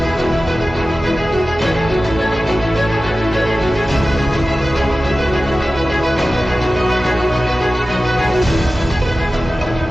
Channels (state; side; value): normal; both; correlation 0.95